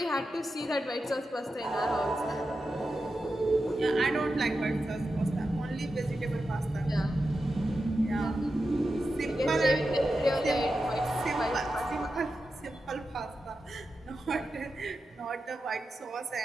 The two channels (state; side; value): normal; both; correlation 0.90